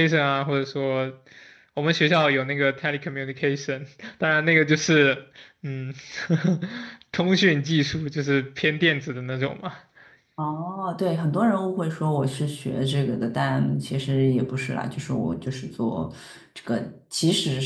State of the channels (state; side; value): identical; both; correlation 1.00